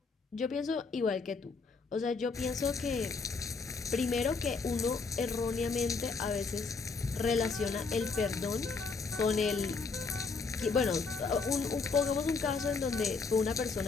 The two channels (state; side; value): quieter; right; 4.5 dB